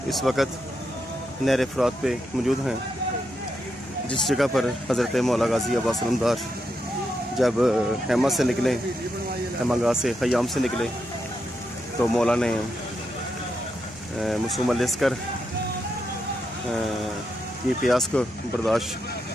इस वक्त नहर फरात पे मौजूद हैं, जिस जगह पर हज़रत मौला गाज़ी अब्बास अलमदार जब हैमा से निकले, हैमागाह से ख़याम से निकले, तो मौला ने मसूम अलअस्कर की प्यास को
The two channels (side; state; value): both; normal; correlation 0.83